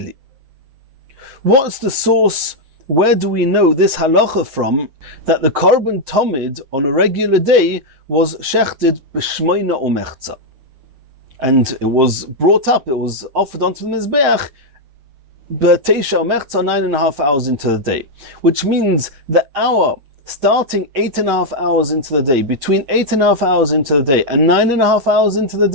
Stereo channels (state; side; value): late; left; 7.6 ms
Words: What's the source? Where do we know this halacha from, that the korban tomid on a regular day was shechted b'shmoina umechza, and it was brought up, it was offered onto the mizbeach b'teisha umechza, 9.5 hours into the day, which means the hour starting 8.5 hours into the day, between 8.5 hours into the day and 9.5 hours into the